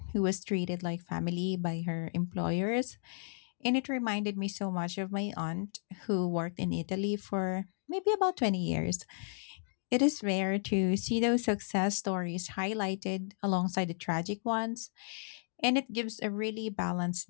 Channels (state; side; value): silent; right; digital silence